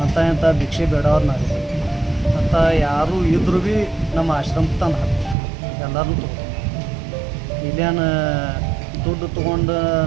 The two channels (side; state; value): left; drops out; at 5.4 s